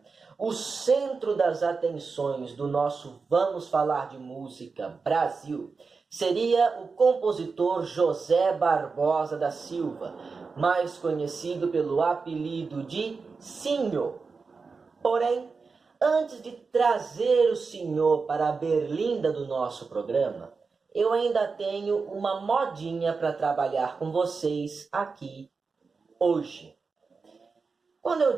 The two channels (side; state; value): left; quieter; 4.7 dB